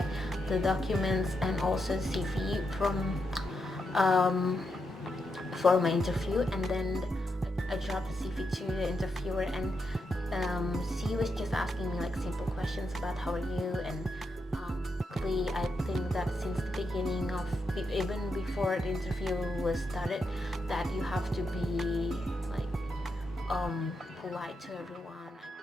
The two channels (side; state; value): both; normal; correlation 0.84